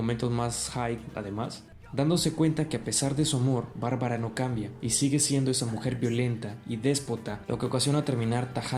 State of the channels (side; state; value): both; identical; correlation 1.00